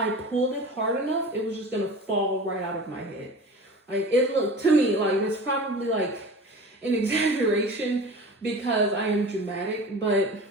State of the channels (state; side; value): normal; both; correlation 0.36